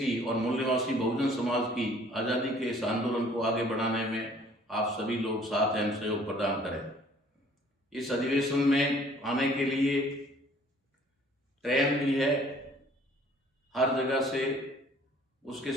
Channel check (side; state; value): both; normal; correlation 0.56